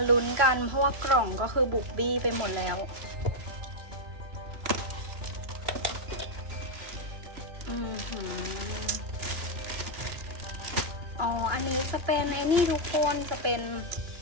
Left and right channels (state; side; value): late; left; 2.9 ms